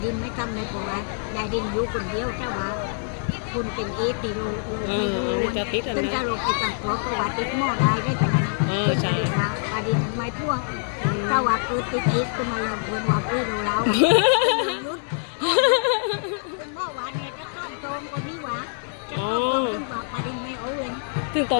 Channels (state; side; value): silent; right; digital silence